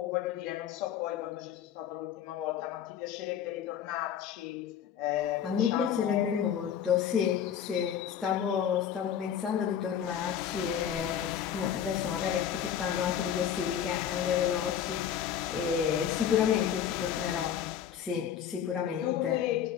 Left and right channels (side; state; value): right; quieter; 9.0 dB